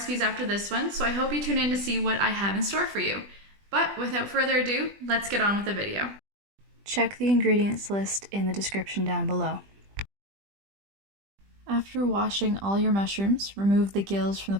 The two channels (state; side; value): late; left; 20 ms